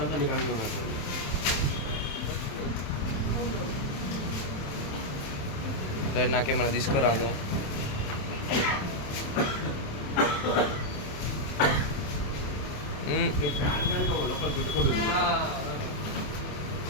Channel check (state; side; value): late; right; 27 ms